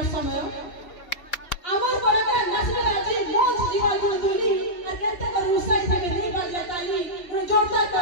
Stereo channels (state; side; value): late; right; 2.8 ms